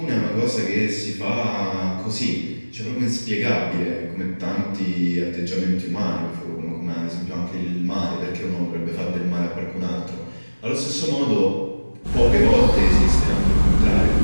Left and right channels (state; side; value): inverted; both; correlation -1.00